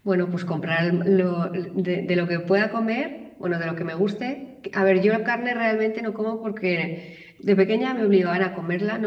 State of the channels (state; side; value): identical; both; correlation 1.00